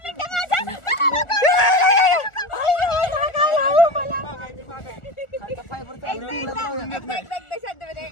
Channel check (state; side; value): late; right; 1.4 ms